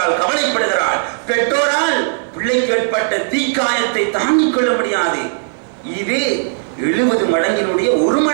கவலைப்படுகிறாள். பெற்றோரால் பிள்ளைக்கு ஏற்பட்ட தீக்காயத்தை தாங்கிக் கொள்ள முடியாது. இது 70 மடங்கினுடைய ஒரு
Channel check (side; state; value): left; silent; digital silence